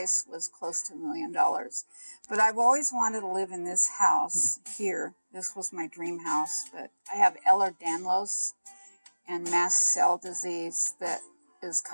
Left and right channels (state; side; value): inverted; both; correlation -1.00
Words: was close to $1 million. But I've always wanted to live in this house here. This was my dream house, but I have Ehlers-Danlos and mast cell disease that is